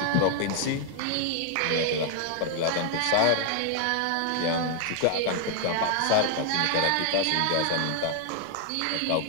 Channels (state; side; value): different; both; correlation 0.00